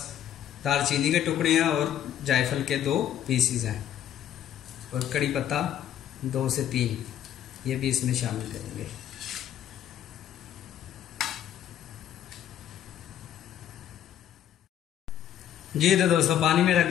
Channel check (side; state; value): right; quieter; 10.6 dB